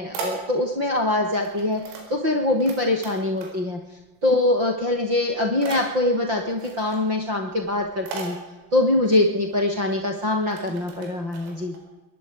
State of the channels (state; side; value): late; left; 5.8 ms